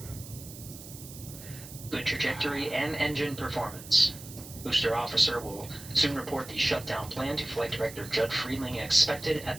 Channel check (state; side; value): noise; right; hiss, 15 dB below the sound